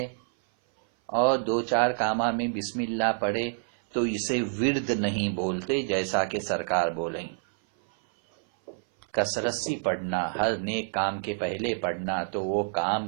اور دو چار کامہ میں بسم اللہ پڑھے تو اسے ورد نہیں بولتے، جیسا کہ سرکار بولیں. کثرت سے پڑھنا، ہر نیک کام کے پہلے پڑھنا، تو وہ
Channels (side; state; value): left; silent; 57 dB below the other